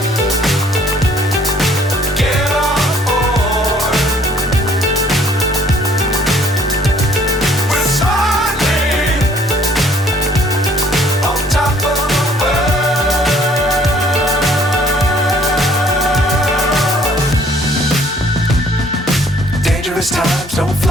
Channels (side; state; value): both; normal; correlation 0.59